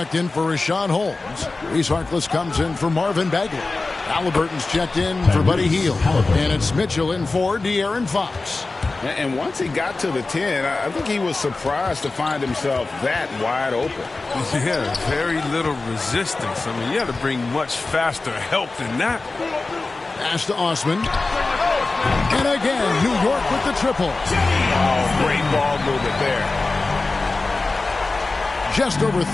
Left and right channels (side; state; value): right; quieter; 3.5 dB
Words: in for Rashawn Holmes. Reese Harkless comes in for Marvin Bagley. Halliburton's checked in for Buddy Hield. And it's Mitchell in for De'Aaron Fox. And once he got to the 10, I think he was surprised to find himself that wide open. Yeah, very little resistance. I mean, you had to bring much faster help than that. Pass to Osman. And again, New York with the triple. Oh, great ball movement there. Just over